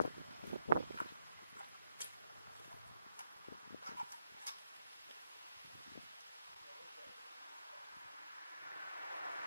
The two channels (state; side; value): inverted; both; correlation -0.81